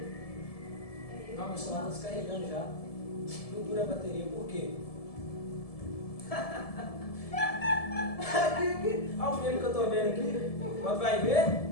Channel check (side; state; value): right; late; 1.7 ms